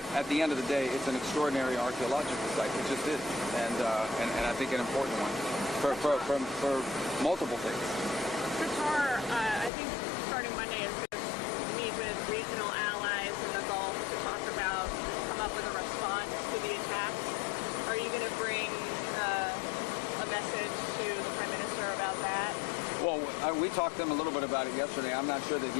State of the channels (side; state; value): right; drops out; at 9.7 s